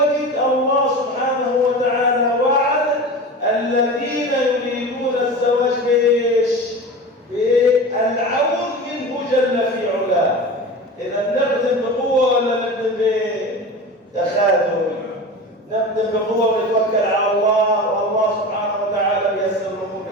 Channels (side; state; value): both; normal; correlation 0.31